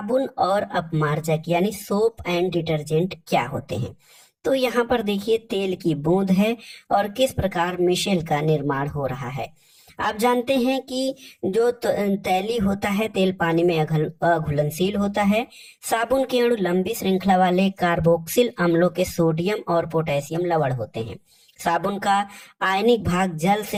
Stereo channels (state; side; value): identical; both; correlation 1.00